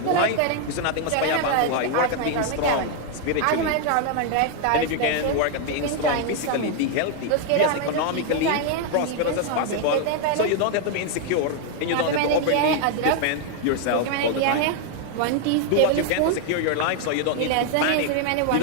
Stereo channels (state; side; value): different; both; correlation 0.00